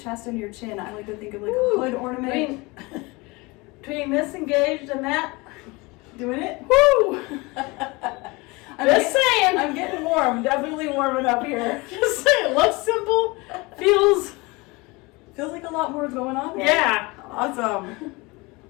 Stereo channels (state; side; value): quieter; right; 24.8 dB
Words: and your chin. I like to think of like a hood ornament. Between this engaged and that, Doing it? woo! Just saying. I'm getting warm. Definitely warming up here. Just saying. Looks simple. Feels. Feels like a lot more is going on there. Yeah. Awesome.